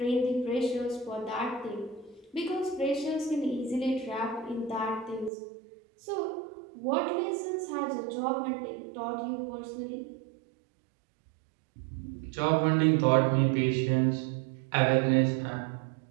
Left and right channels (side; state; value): left; drops out; at 5.3 s